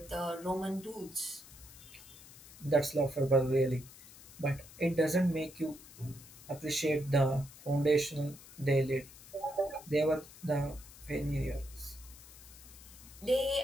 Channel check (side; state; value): left; noise; hiss, 19 dB below the sound